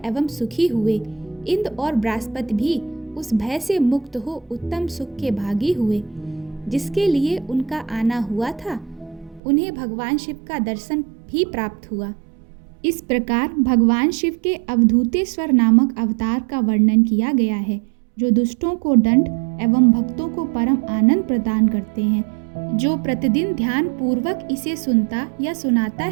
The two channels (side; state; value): left; drops out; at 9.4 s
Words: एवं सुखी हुए। इंद्र और बृहस्पति भी उस भय से मुक्त हो उत्तम सुख के भागी हुए। जिसके लिए उनका आना हुआ था, उन्हें भगवान शिव का दर्शन भी प्राप्त हुआ। इस प्रकार भगवान शिव के अवधूतेश्वर नामक अवतार का वर्णन किया गया है, जो दुष्टों को दंड एवं भक्तों को परम आनंद प्रदान करते हैं। जो प्रतिदिन ध्यान पूर्वक इसे सुनता या सुनाता